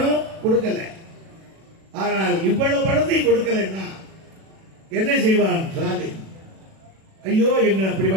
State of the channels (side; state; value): left; late; 37 ms